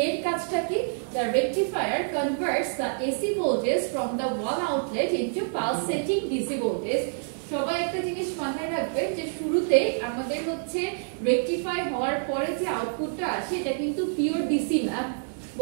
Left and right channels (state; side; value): silent; left; digital silence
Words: এর কাজটা কি, the rectifier converts the AC voltage from the one outlet into pulsating DC voltage. সবাই একটা জিনিস মাথায় রাখবেন যে শুরুতে আমাদের হচ্ছে রেকটিফাই হওয়ার পরে যে আউটপুটটা আসে এটা কিন্তু পিওর ডিসি না,